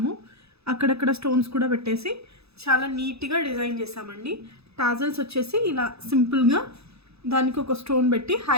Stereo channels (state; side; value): late; left; 0.79 ms